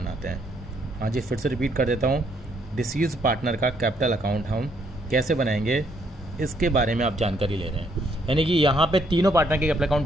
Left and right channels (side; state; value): both; normal; correlation 0.70